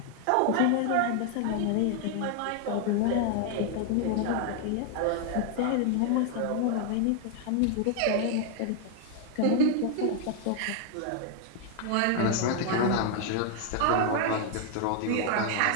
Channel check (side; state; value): both; different; correlation 0.00